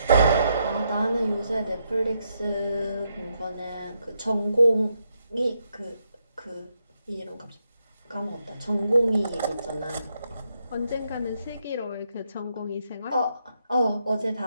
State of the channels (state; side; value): inverted; both; correlation -0.79